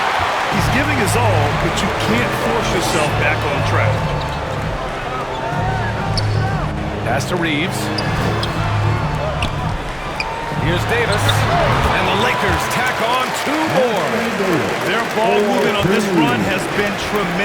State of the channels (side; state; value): both; identical; correlation 1.00